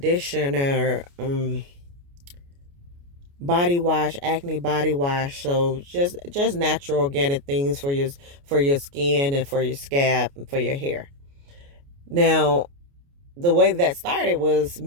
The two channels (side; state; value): left; late; 29 ms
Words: body wash, acne body wash. So just natural organic things for your skin and for your scalp and for your hair. Now, the way that started was